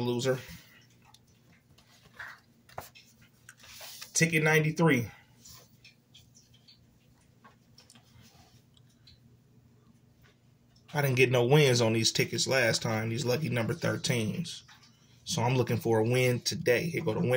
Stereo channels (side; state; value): both; identical; correlation 1.00